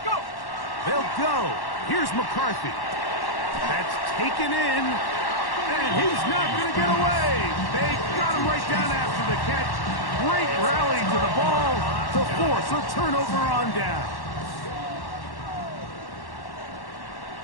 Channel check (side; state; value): right; late; 1.1 ms